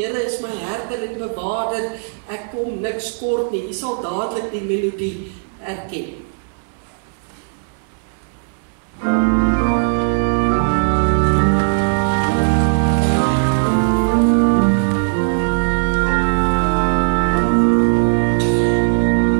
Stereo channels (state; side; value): silent; left; 67 dB below the other